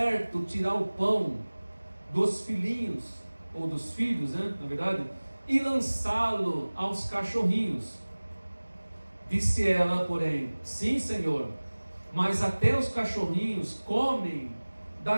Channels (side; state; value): both; inverted; correlation -1.00